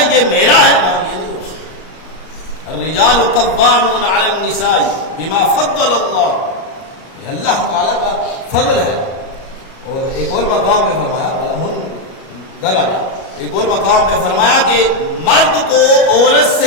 یہ میرا ہے، نا یہ نہیں ہو سکتا. الرجال قوامون علی النساء بما فضل اللہ. یہ اللہ تعالیٰ کا فضل ہے. اور ایک اور مقام پہ فرمایا ایک اور مقام پہ فرمایا کہ مرد کو عورت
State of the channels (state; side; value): late; right; 37 ms